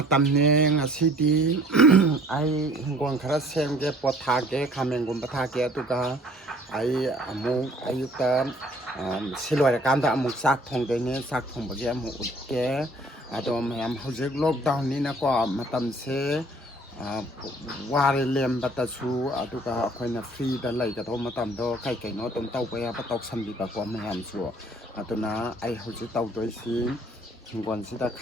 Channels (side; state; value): both; normal; correlation 0.55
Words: ꯉꯁꯤꯗꯤ ꯑꯩ ꯍꯤꯡꯒꯣꯜ ꯈꯔ ꯁꯦꯝꯒꯦ ꯄꯣꯠ ꯊꯥꯒꯦ ꯈꯥꯃꯦꯟꯒꯨꯝꯕ ꯊꯥꯒꯦ ꯑꯗꯨꯒ ꯑꯩ ꯑꯃꯨꯛ ꯑꯌꯨꯛꯇ ꯁꯤ ꯂꯣꯏꯔꯀꯥꯟꯗ ꯑꯃꯨꯛ ꯆꯥꯛ ꯊꯣꯡꯗꯣꯏꯅꯦ ꯆꯥꯛ ꯊꯣꯡꯕꯒꯤ ꯑꯃꯨꯛ ꯎꯠꯀꯦ ꯑꯗꯣ ꯃꯌꯥꯝ ꯍꯧꯖꯤꯛ ꯂꯣꯛꯗꯥꯎꯟꯅꯤꯅꯀꯣ ꯃꯇꯝꯁꯦ ꯋꯥꯔꯦ ꯂꯦꯟꯕꯗꯁꯨ ꯑꯗꯨꯒ ꯑꯩꯈꯣꯏꯅ ꯐ꯭ꯔꯤꯗ ꯂꯩꯒꯗꯧꯕ ꯃꯇꯝꯗꯣ ꯀꯩ ꯀꯩꯅꯣ ꯑꯗꯨꯝ ꯇꯧꯕ ꯌꯥꯕ ꯇꯧꯁꯟꯕꯤꯕꯀꯣ ꯃꯌꯥꯝꯁꯨ ꯑꯗꯨꯅ ꯑꯩ ꯍꯧꯖꯤꯛ ꯇꯧꯗꯣꯏꯁꯤ ꯍꯤꯡꯒꯣꯜꯁꯤꯗ